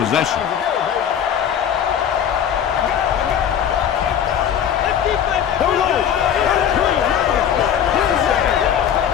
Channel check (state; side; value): quieter; right; 9.0 dB